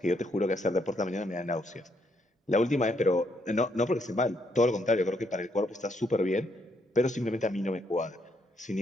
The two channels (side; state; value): both; normal; correlation 0.74